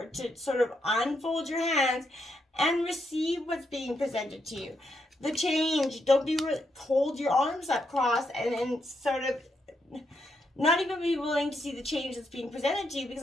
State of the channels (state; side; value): normal; both; correlation 0.79